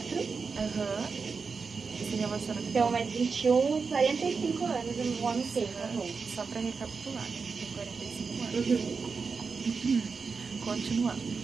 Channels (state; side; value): quieter; left; 5.0 dB